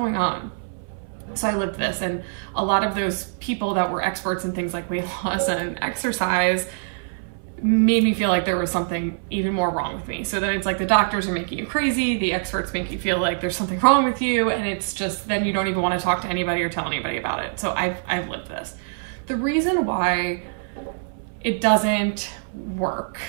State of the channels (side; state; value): left; silent; 60 dB below the other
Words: on? So I lived this, and a lot of those people that were experts in things like weight loss and exercise made me feel like there was something even more wrong with me. So then it's like the doctors are making you crazy, the experts make you feel like there's something wrong with you, and it's just, then you don't even want to talk to anybody or tell anybody about it. So I've lived this. The reason why it doesn't work